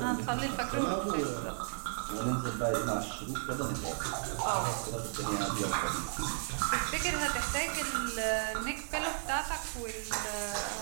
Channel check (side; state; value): left; silent; 55 dB below the other